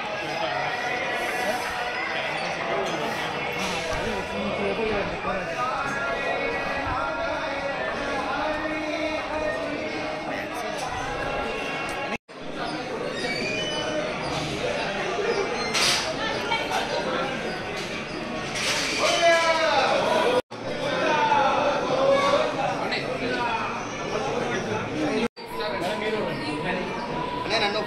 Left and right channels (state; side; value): identical; both; correlation 1.00